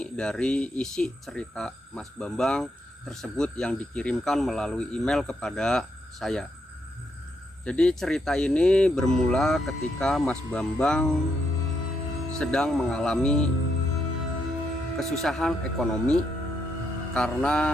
dari isi cerita Mas Bambang tersebut yang dikirimkan melalui email kepada saya. Jadi cerita ini bermula ketika Mas Bambang sedang mengalami kesusahan ekonomi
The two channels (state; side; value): normal; both; correlation 0.78